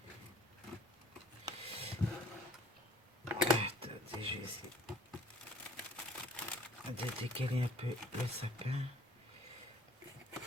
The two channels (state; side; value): normal; both; correlation 0.53